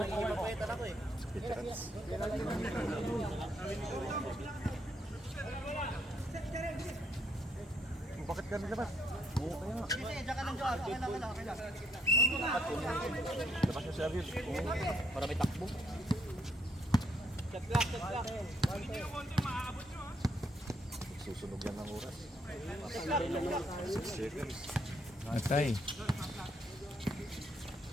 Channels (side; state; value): both; normal; correlation 0.72